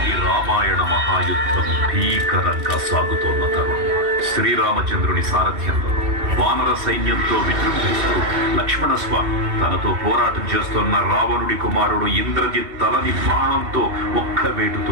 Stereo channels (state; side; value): late; left; 2.7 ms